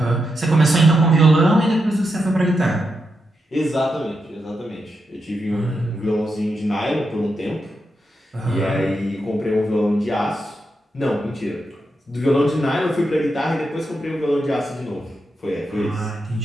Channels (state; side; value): normal; both; correlation 0.85